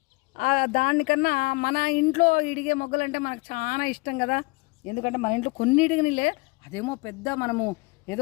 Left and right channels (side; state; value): right; quieter; 25.9 dB